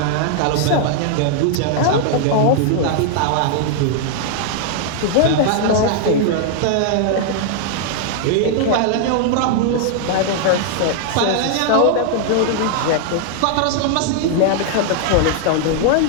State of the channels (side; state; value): both; different; correlation 0.00